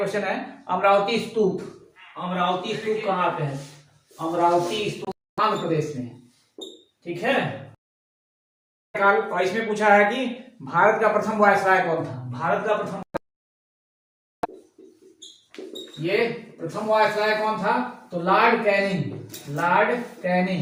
है अमरावती स्तूप। अमरावती स्तूप कहाँ पे है? अमरावती स्तूप आंध्र प्रदेश में, ठीक है। और इसमें पूछा है कि भारत का प्रथम वायसराय कौन था? भारत का प्रथम, ये प्रथम वायसराय कौन था? तो लॉर्ड कैनिंग। लॉर्ड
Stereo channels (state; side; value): identical; both; correlation 1.00